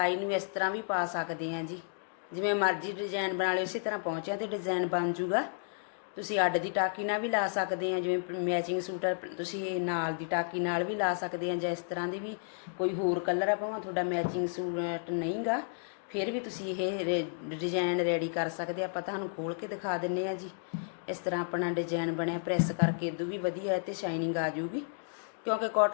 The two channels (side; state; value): right; silent; digital silence